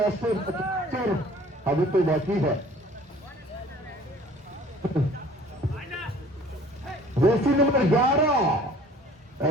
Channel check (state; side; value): normal; both; correlation 0.51